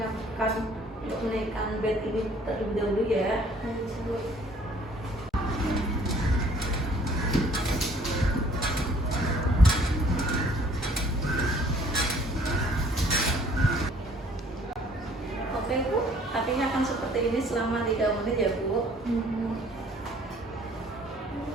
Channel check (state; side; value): normal; both; correlation 0.57